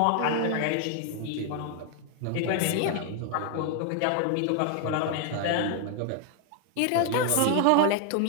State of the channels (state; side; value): different; both; correlation 0.01